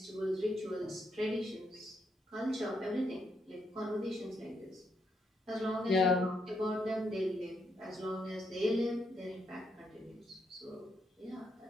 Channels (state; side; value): normal; both; correlation 0.78